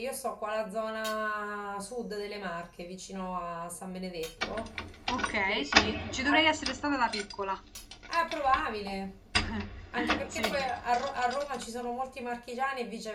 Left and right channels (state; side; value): identical; both; correlation 1.00